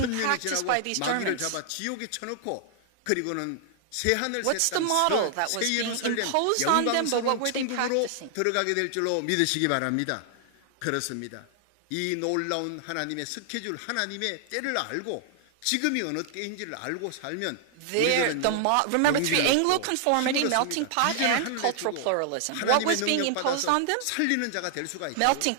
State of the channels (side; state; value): both; different; correlation 0.00